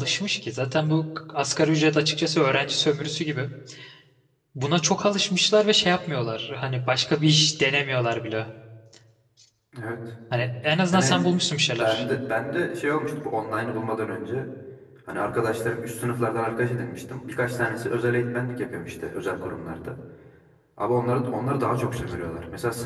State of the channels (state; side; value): identical; both; correlation 1.00